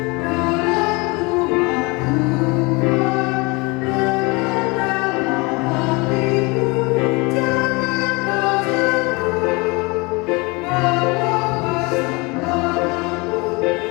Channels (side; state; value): right; quieter; 26.9 dB